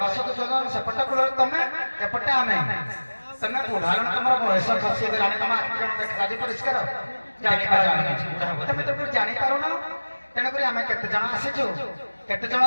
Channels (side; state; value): both; inverted; correlation -1.00